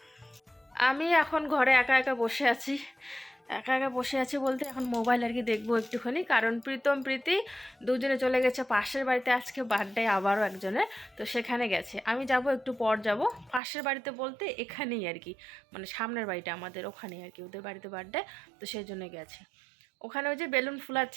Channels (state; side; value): drops out; left; at 13.6 s